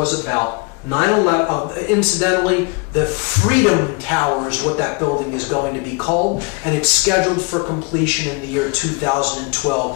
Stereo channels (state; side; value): quieter; right; 30.5 dB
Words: about. Incidentally, the Freedom Tower is what that building is going to be called, and it's scheduled for completion in the year